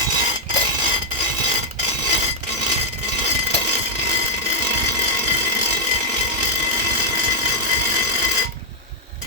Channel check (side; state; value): both; normal; correlation -0.05